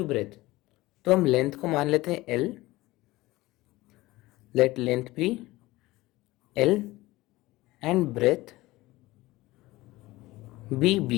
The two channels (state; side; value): quieter; right; 19.1 dB